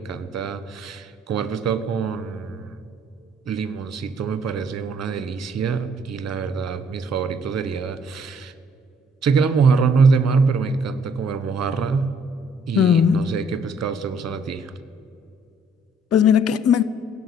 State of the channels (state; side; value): normal; both; correlation 0.62